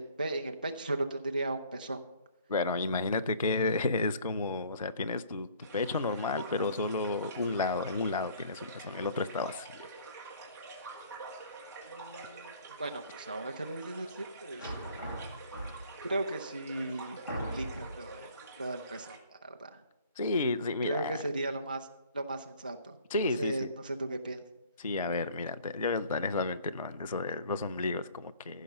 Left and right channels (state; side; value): inverted; both; correlation -0.54